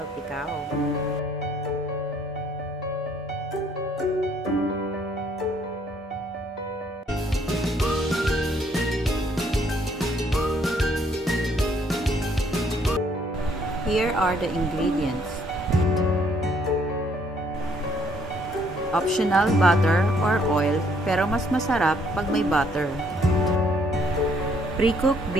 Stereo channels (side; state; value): both; normal; correlation 0.66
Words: Here are the ingredients. Optional butter or oil, pero mas masarap pag may butter. Pre-cooked